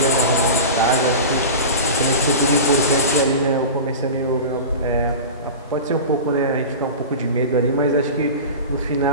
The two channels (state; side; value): inverted; both; correlation -0.30